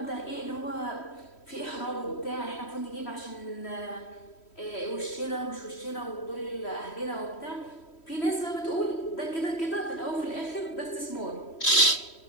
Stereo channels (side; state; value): right; late; 3.1 ms